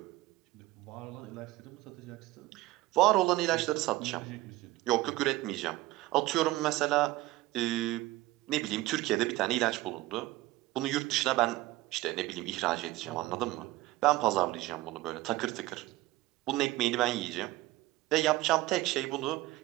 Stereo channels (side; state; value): left; quieter; 18.0 dB